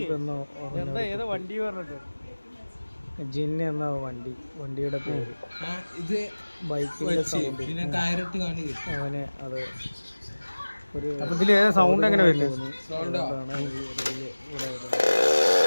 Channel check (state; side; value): inverted; both; correlation -1.00